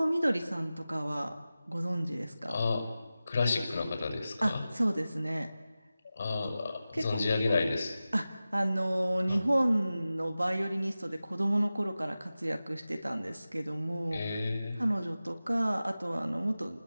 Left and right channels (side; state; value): both; inverted; correlation -0.95